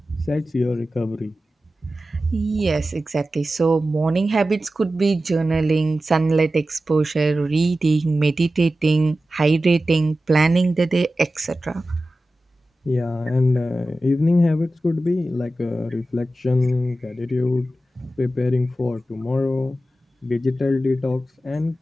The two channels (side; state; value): both; normal; correlation 0.94